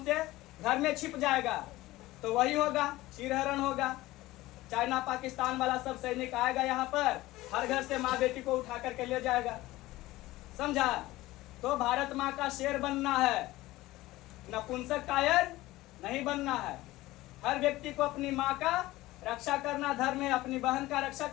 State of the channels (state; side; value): quieter; right; 17.9 dB